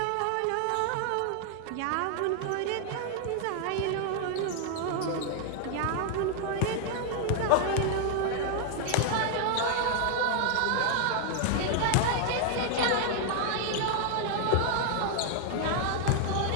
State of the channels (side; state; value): both; different; correlation 0.00